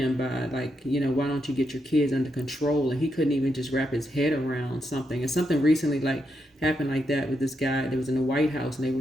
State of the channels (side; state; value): both; normal; correlation 0.82